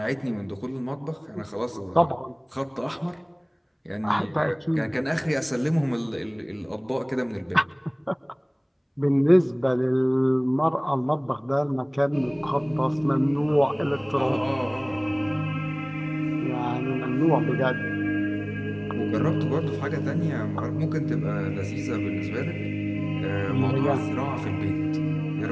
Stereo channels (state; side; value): identical; both; correlation 1.00